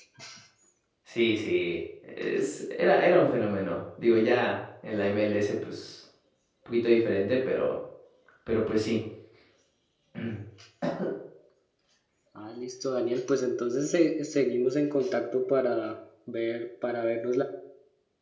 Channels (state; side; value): identical; both; correlation 1.00